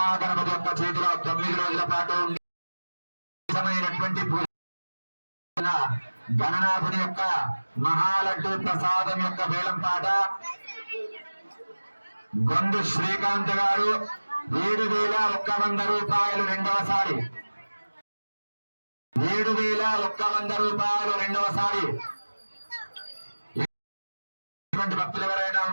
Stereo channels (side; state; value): both; inverted; correlation -1.00